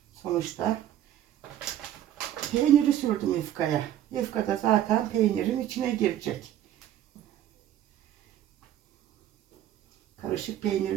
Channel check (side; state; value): left; quieter; 11.7 dB